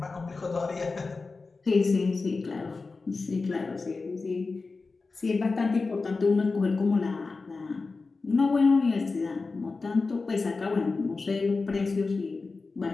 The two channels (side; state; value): right; quieter; 4.0 dB